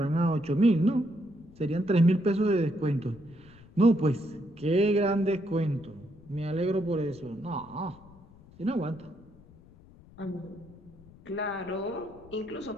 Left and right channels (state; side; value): noise; left; rumble, 23 dB below the sound